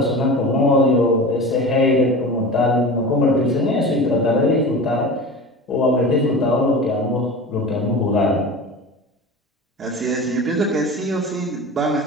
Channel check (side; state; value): both; normal; correlation 0.33